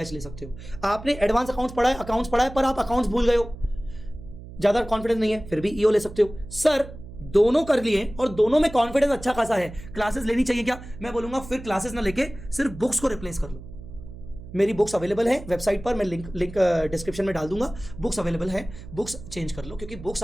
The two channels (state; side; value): noise; right; hum, 14 dB below the sound